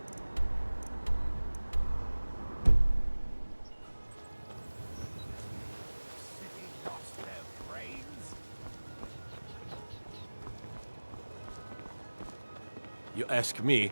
You ask me,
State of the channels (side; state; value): both; inverted; correlation -1.00